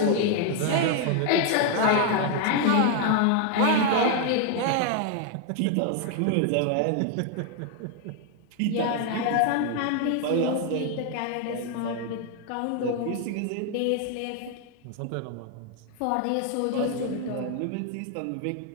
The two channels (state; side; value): different; both; correlation 0.00